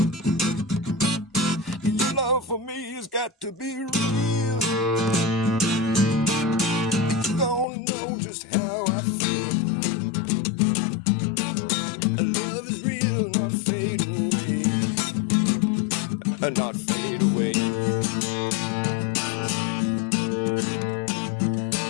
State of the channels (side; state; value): right; drops out; at 7.7 s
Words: Your love for me has got to be real. You don't know just how I feel. Love is real, not fade away. Not fade away.